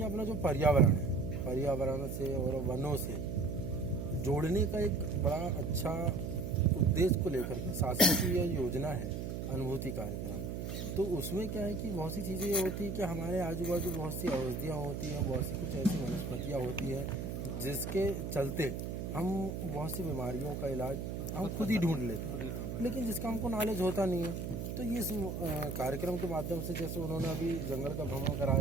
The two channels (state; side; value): noise; right; hum, 4 dB below the sound